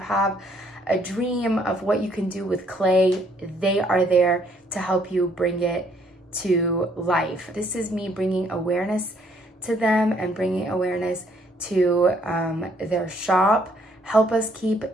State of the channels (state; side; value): normal; both; correlation 0.66